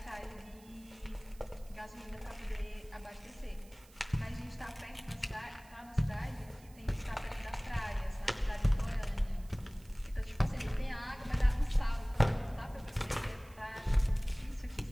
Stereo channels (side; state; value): right; noise; hiss, 25 dB below the sound